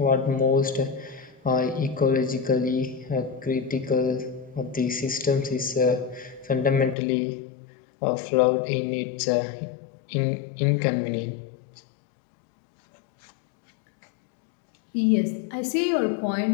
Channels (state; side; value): drops out; right; at 7.0 s